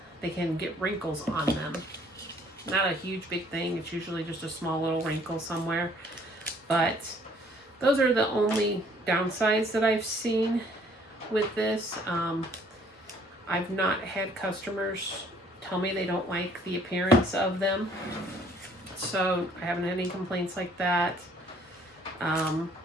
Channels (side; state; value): both; normal; correlation 0.60